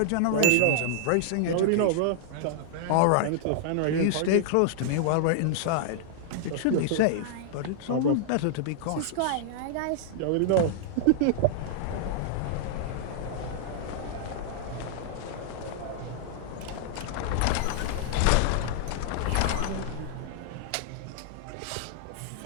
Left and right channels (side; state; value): both; different; correlation -0.01